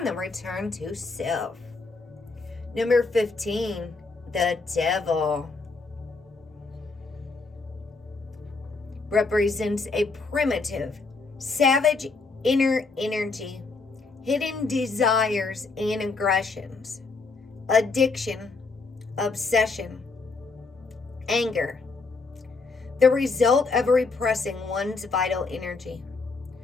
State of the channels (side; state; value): right; quieter; 4.0 dB